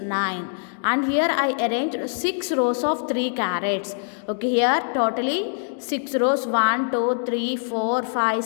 and here I arranged 6 rows of 3 carats. Okay, here totally 6 rows, 1 2 3 4 5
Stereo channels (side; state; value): right; silent; digital silence